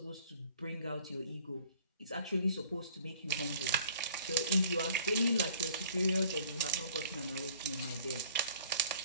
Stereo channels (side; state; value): both; inverted; correlation -0.54